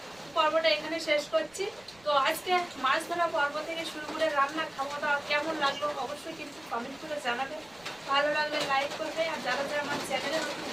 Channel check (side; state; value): right; noise; rumble, 29 dB below the sound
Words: পর্বটা এখানে শেষ করছি। তো আজকে মাছ ধরা পর্ব থেকে শুরু করে রান্না খাওয়াটা কেমন লাগলো অবশ্যই কিন্তু কমেন্ট করে জানাবে। ভালো লাগলে লাইক করবে, আর যারা যারা আমার চ্যানেলে নতুন